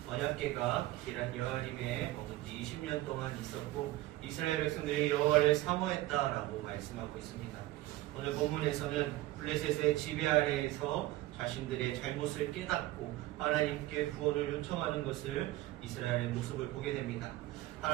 언약궤가 기란 여아림에 머문 지 20년 동안 있었고 이스라엘 백성들이 여호와를 사모했다라고 말씀하고 있습니다. 오늘 본문에서는 블레셋의 지배 아래에서 자신들의 잘못을 깨닫고 하나님께 구원을 요청하는 것을 이스라엘의 모습을 보게 됩니다.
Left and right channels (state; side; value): quieter; left; 17.0 dB